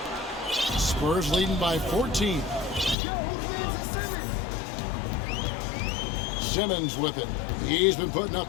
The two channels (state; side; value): drops out; right; at 3.0 s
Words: Spurs leading by 14. Simmons with it. He's been putting